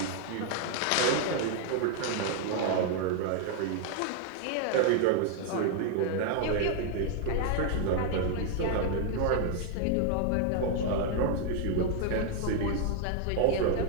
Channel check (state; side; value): different; both; correlation 0.00